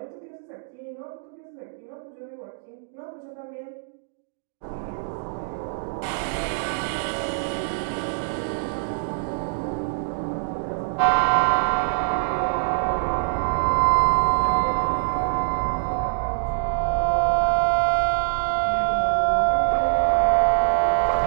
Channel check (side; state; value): left; silent; digital silence